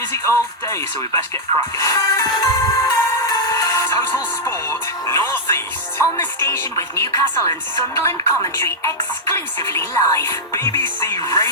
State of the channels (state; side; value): normal; both; correlation -0.05